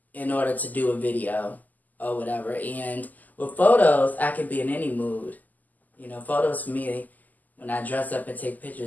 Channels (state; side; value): late; right; 0.082 ms